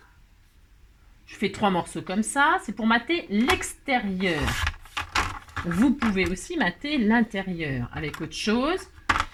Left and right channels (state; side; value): identical; both; correlation 1.00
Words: fais 3 morceaux comme ça, c'est pour mater l'extérieur. Vous pouvez aussi mater l'intérieur avec autre chose.